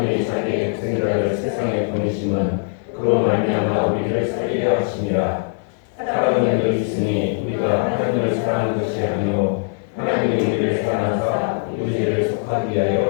자기의 독생자를 세상에 보내심은 그로 말미암아 우리를 살리려 하심이라. 사랑은 여기 있으니 우리가 하나님을 사랑하는 것이 아니요 하나님이 우리를 사랑하사 우리 죄를 속하기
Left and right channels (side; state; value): right; silent; 65 dB below the other